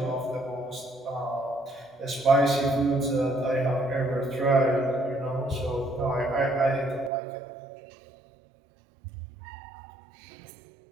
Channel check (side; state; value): left; drops out; at 7.1 s